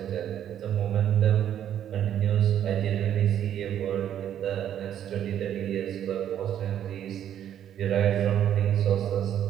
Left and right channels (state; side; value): quieter; left; 10.2 dB